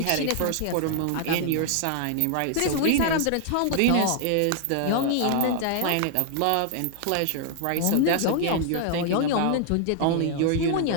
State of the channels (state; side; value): different; both; correlation 0.00